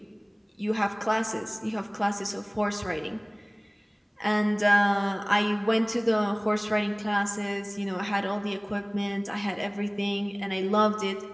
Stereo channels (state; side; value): identical; both; correlation 1.00